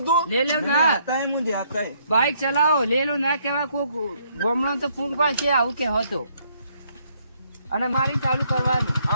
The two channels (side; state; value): both; inverted; correlation -0.69